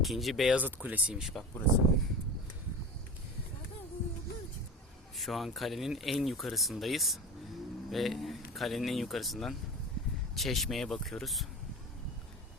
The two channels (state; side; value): normal; both; correlation 0.31